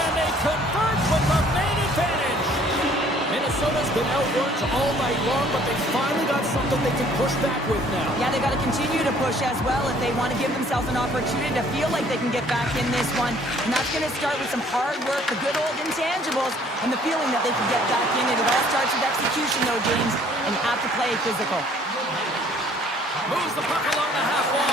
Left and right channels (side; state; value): both; normal; correlation 0.58